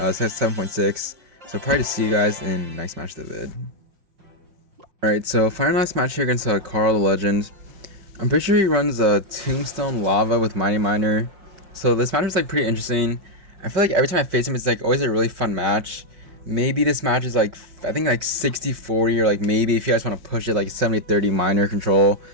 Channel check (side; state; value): left; late; 5.6 ms